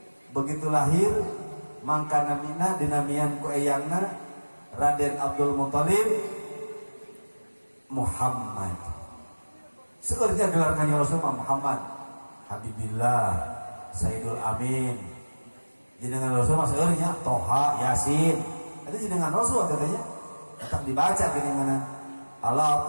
begitu lahir mangka namina dinamian ku eyangna Raden Abdul Muthalib Muhammad seurnya gelar kanjeng Rasul Muhammad Habibillah Sayyidul Amin jenengan Rasul mah seurnya Toha Yasin itu jenengan Rasul katanya tetap dibaca jenengan ala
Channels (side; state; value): both; inverted; correlation -1.00